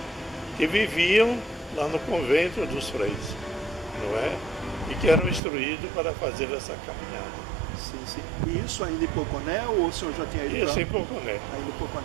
que viviam lá no convento dos freis, não é? E que eram instruídos para fazer essa caminhada. Sim, sim. E isso ainda em Poconé ou o senhor já tinha ido? Isso em Poconé. Ainda em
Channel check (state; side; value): drops out; left; at 5.4 s